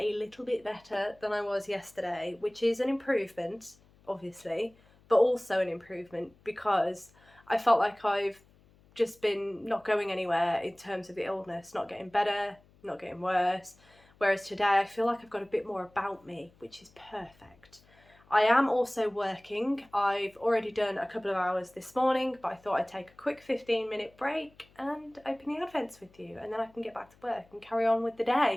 little bit better than I was yesterday, which is an improvement, obviously, but also an improvement because I felt like I've just been not going anywhere in terms of the illness, not getting better, not getting worse. Whereas today I feel like I've got a bit more about me, which is perfect. I am also working. I've already done a couple of hours this morning, but I thought I'd take a quick 15-minute break and open the Advents with you, and then I can get back to work and carry on with the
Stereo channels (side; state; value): left; noise; hum, 29 dB below the sound